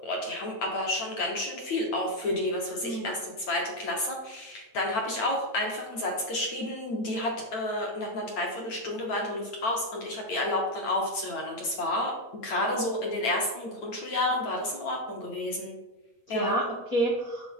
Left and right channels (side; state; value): right; late; 8.9 ms